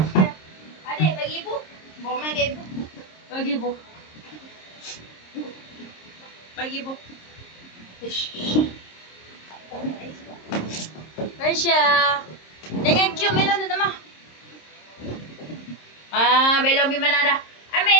Adik, bagi ibu. Bawa main ke ibu. Bagi ibu. Bagi ibu. Raisya. Jangan cium melon tu, Tamah. Belon pergi mana dah? Ambil,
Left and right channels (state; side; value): late; right; 26 ms